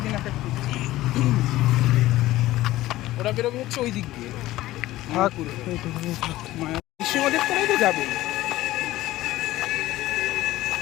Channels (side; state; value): right; quieter; 16.3 dB